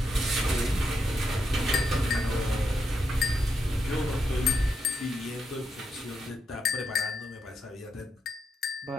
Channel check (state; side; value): normal; both; correlation 0.82